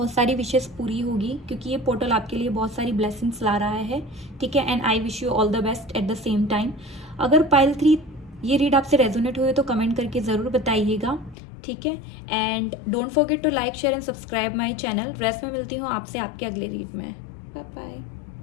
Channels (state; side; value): drops out; right; at 11.4 s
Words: सारी विशेस पूरी होगी, क्योंकि ये पोर्टल आपके लिए बहुत सारी ब्लेसिंग्स ला रहा है, ठीक है। And I wish you all the best at the same time. अगर पाइल 3 ये रीड आपसे रेजोनेट हुए तो कमेंट करके ज़रूर बताइएगा, ठीक है। And don't forget to like, share and subscribe my channel. Rest में मिलती हूँ आपसे आपके अगले रीड में। Bye